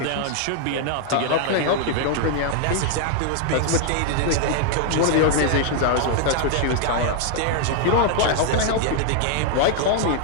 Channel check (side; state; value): both; different; correlation 0.00